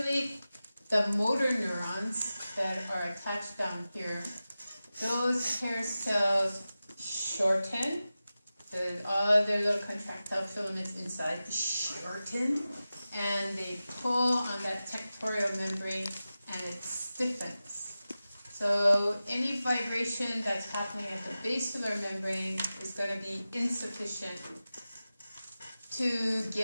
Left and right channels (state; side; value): inverted; both; correlation -0.94